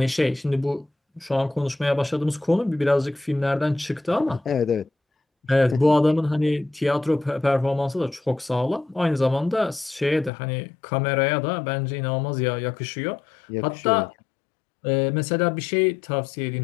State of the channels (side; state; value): right; drops out; at 10.3 s